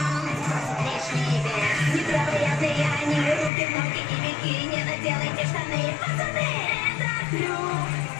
Лишний вес, невероятные они, руки, ноги и бикини, наделайте штаны, пацаны! Это трюк!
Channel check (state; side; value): drops out; right; at 3.5 s